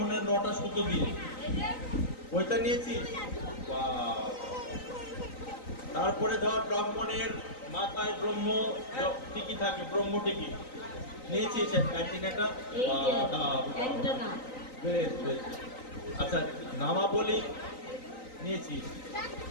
9টা সুতো দিয়ে পয়তা নিয়েছিস। তারপরে ধর ব্রাহ্মণের মাথায় ব্রহ্ম টিকি থাকে, ব্রহ্ম টিকি নিয়েছিস অ্যান্টিনাটা। বেশ বেশ। আচ্ছা, নামাবলী নিয়েছিস,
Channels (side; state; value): right; late; 3.9 ms